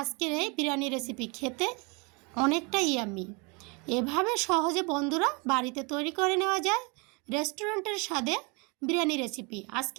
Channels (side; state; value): left; quieter; 30.7 dB